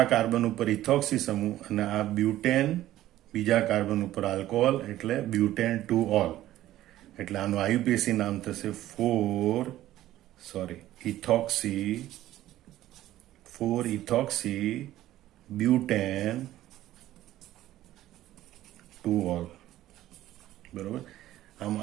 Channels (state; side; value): quieter; left; 14.2 dB